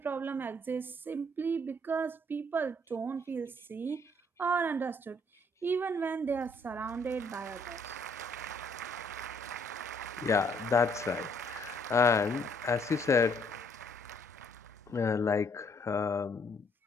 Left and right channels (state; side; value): normal; both; correlation 0.66